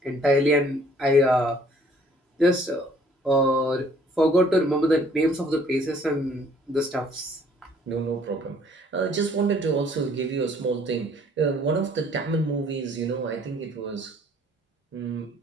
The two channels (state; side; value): normal; both; correlation 0.59